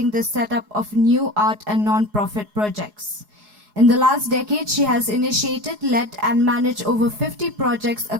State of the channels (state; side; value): late; left; 4.8 ms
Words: the setup of new art and non-profit projects. In the last decade, she has initiated, led, and managed over 50 projects